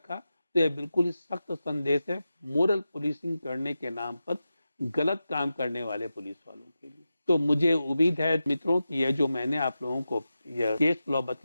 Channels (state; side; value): inverted; both; correlation -0.92